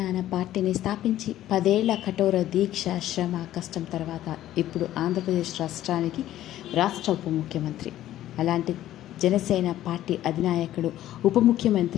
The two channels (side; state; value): right; quieter; 13.3 dB